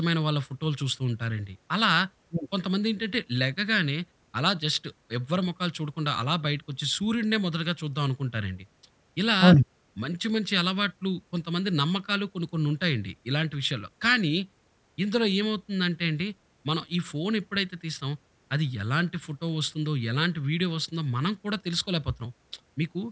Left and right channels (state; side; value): identical; both; correlation 1.00